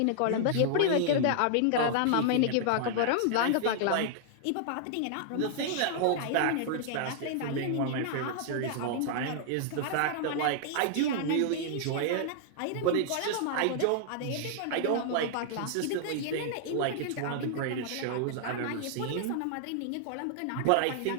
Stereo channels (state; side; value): different; both; correlation -0.01